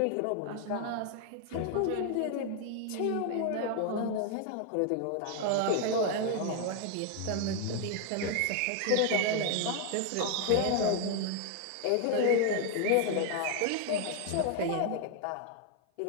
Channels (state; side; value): different; both; correlation 0.00